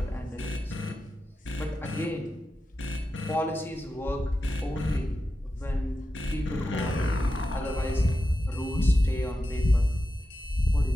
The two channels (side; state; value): both; normal; correlation 0.91